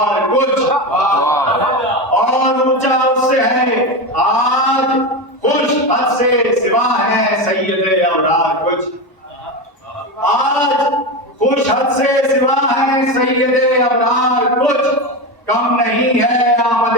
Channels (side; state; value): both; normal; correlation 0.18